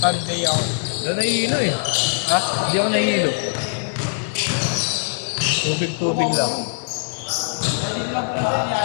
Sunday ako. Doon nahihilo eh. Ha? Hindi ako nahihilo. Tubig-tubig lang.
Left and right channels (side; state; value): right; silent; digital silence